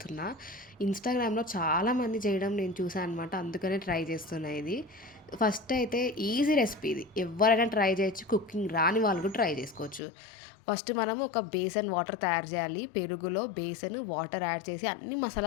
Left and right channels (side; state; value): right; drops out; at 10.0 s